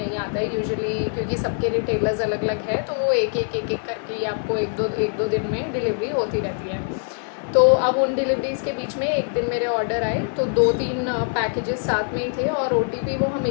आता है यूजुअली, क्योंकि सबके रिटेलर्स अलग अलग है, तो वो एक एक करके ही आपको एक दो दिन में डिलीवरी होती रहती है। तो अब उन डिलीवरीज़ के बीच में एक दिन मेरे ऑर्डर आए, तो 2-3 पैकेजेस साथ में ही थे। और ओटीपी वो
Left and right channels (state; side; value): silent; right; 63 dB below the other